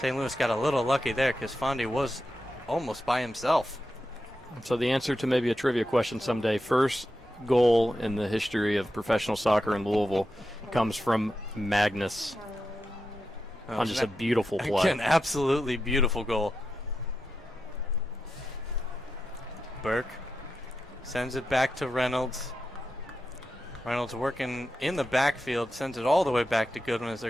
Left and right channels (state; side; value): normal; both; correlation 0.89